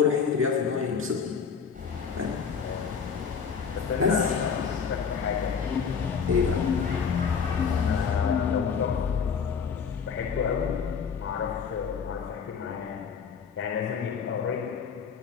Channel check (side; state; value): right; quieter; 6.3 dB